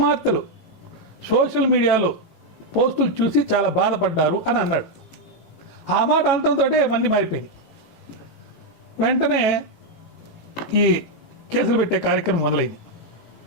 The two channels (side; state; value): right; late; 18 ms